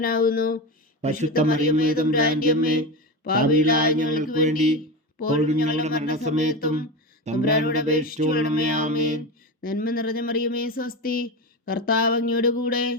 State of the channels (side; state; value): both; normal; correlation 0.21